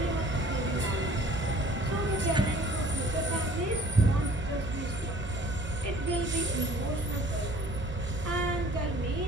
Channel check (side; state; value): both; normal; correlation 0.53